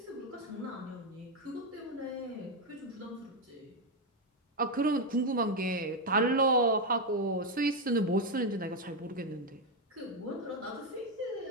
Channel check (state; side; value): normal; both; correlation 0.05